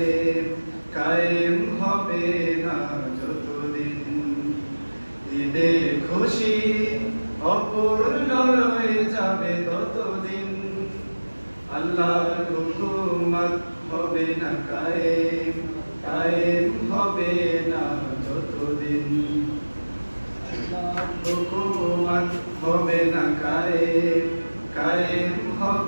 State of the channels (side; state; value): both; inverted; correlation -1.00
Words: কায়েম হবে না যতদিন। ঈদের খুশি অপূর্ণ রয়ে যাবে ততদিন আল্লাহর হুকুমত হবে না কায়েম, কায়েম হবে না যতদিন। আল্লাহর হুকুমত হবে না কায়েম, কায়েম